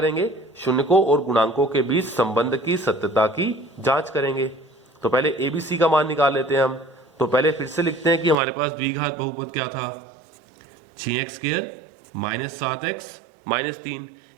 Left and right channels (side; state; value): left; drops out; at 8.3 s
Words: शून्यकों और गुणांकों के बीच संबंध की सत्यता की जांच करेंगे। तो पहले एबीसी का मान निकाल लेते हैं हम। तो पहले फिर से लिखते हैं कि हमारे पास द्विघात बहुपद क्या था, 6x² -7x -3।